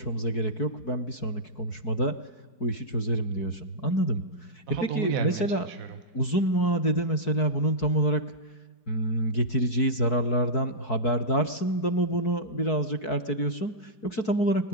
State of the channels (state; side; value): late; right; 4.6 ms